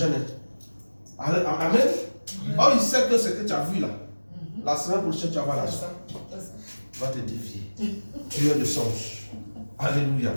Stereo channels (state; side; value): inverted; both; correlation -1.00